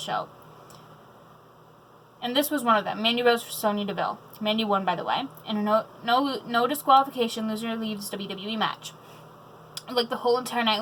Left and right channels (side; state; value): both; identical; correlation 1.00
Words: And this was one of them. Mandy Rose for Sonya Deville. Mandy won, by the way. And a no disqualification, loser leaves WWE match. Like, the whole entire night